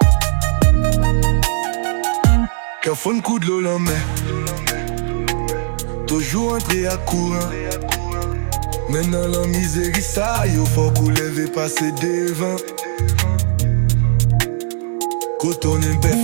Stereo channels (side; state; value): left; silent; 61 dB below the other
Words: Qu'un fun coup de l'eau la main, toujours entré à courant. Maintenant la misérie ça, yo faut couler, passer devant. Quand on est bête,